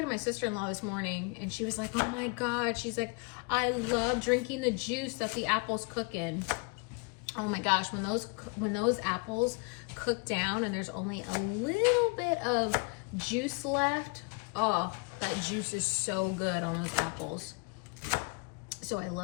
to my sister-in-law this morning, and she was like, oh my God, she's like, I love drinking the juice that the apples cook in. Oh my gosh, when those apples cook down and there's only a little bit of juice left, oh, that juice is so good on those apples. So I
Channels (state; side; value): quieter; right; 32.9 dB